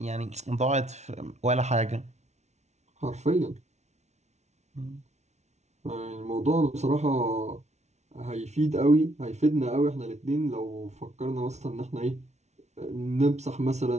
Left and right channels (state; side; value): late; left; 0.32 ms